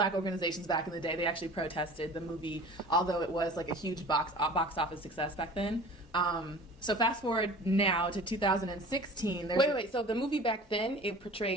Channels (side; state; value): both; normal; correlation 0.42